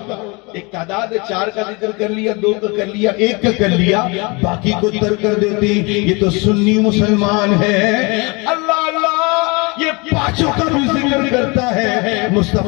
ایک تعداد 4 کا ذکر کر لیا، 2 کا کر لیا، 1 کا کر لیا، باقی کو ترک کر دیتے، یہ تو سنی مسلمان ہے۔ اللہ اللہ یہ 5 کا بھی ذکر کرتا ہے،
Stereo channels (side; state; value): right; quieter; 28.2 dB